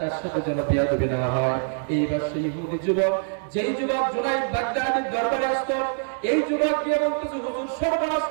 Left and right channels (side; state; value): left; silent; digital silence